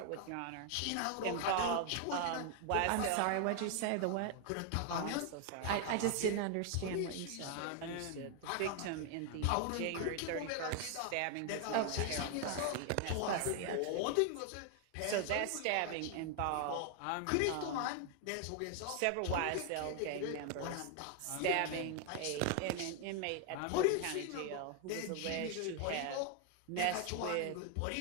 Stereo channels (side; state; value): both; different; correlation 0.00